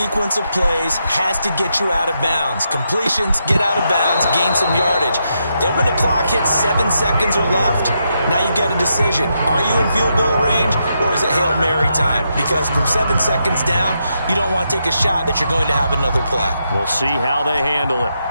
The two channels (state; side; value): inverted; both; correlation -0.82